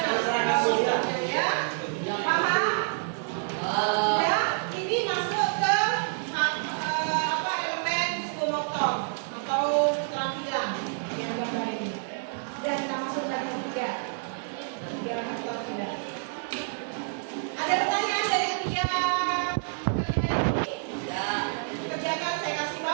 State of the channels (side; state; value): left; silent; digital silence